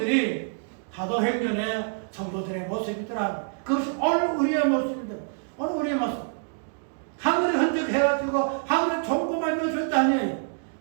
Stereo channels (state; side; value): silent; left; digital silence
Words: 사도행전의 성도들의 모습이더라. 그것이 오늘 우리의 모습입니다. 오늘 우리의 모습. 하늘의 흔적 해가지고 하늘의 종고만 넣어줄 때 아니에요.